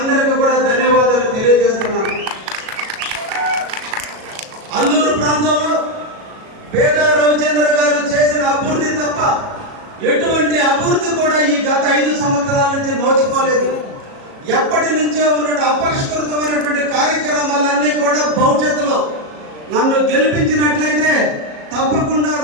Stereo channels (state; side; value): late; left; 37 ms